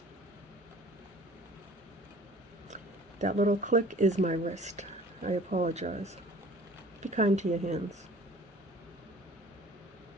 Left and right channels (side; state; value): both; normal; correlation 0.49